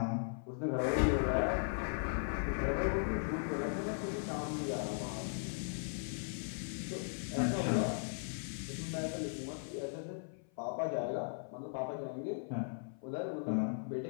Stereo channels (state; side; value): silent; right; 52 dB below the other